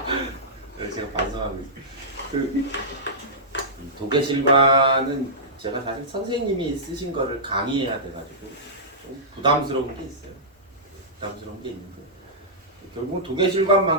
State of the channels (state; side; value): normal; both; correlation -0.15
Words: 그래서 제가 반성하고 있어요. 도계실관은 제가 사실 선생님이 쓰신 거를 강의해야 돼가지고 좀 부담스러운 게 있어요. 부담스러운 게 있는데 결국은